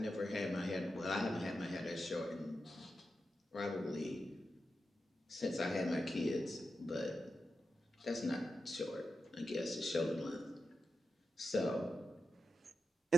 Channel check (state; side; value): normal; both; correlation 0.89